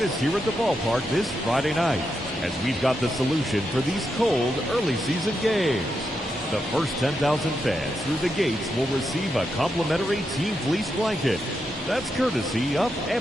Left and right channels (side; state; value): both; normal; correlation 0.84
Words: here at the ballpark this Friday night as we've got the solution for these cold early season games. The first 10,000 fans through the gates will receive a complimentary Team Fleece blanket. That's courtesy of